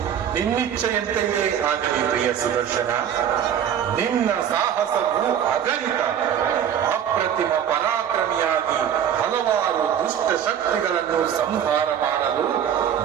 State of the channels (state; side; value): quieter; left; 9.2 dB